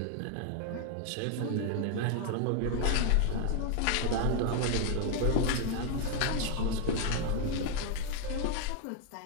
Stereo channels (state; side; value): different; both; correlation 0.01